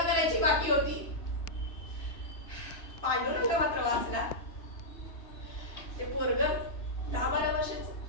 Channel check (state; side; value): late; right; 2.8 ms